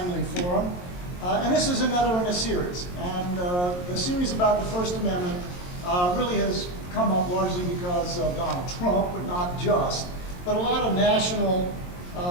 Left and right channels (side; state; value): right; late; 22 ms